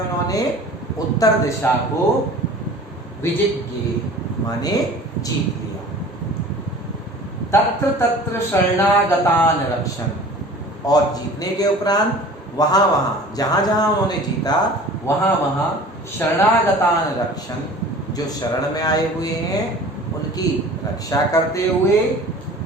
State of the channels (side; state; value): both; normal; correlation 0.43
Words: उत्तर दिशा को विजिज्ञे माने जीत लिया। तत्र तत्र शरणागतान रक्षण, और जीतने के उपरांत वहां वहां जहां जहां उन्होंने जीता वहां वहां शरणागतान रक्षण, जो शरण में आए हुए हैं उनकी रक्षा करते हुए,